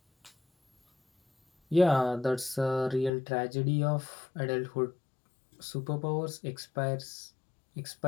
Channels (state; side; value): drops out; right; at 3.1 s